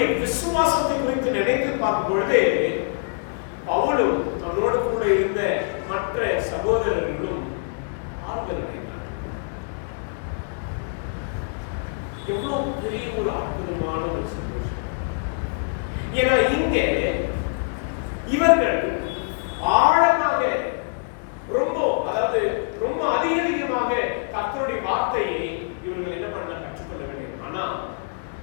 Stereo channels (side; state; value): right; silent; digital silence